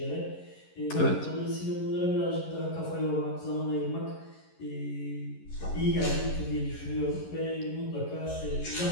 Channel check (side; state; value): right; late; 11 ms